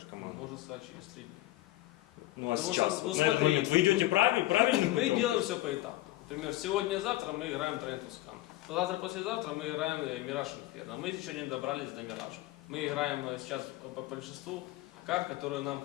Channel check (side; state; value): right; quieter; 16.8 dB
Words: команду? Можно сказать через 3 дня. Ну а Потому сейчас, что, вот ну, на этот смотри, момент, вы идете правильно? Мы делаем все по этапу. Например, сегодня-завтра мы играем Train to Scan. Завтра-послезавтра мы играем Mirage Inferno. Мы еще не добрались до Mirage. Мы играем сейчас по большинству карт, которые нам